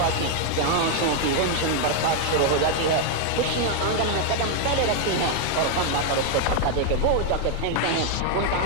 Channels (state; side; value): different; both; correlation 0.00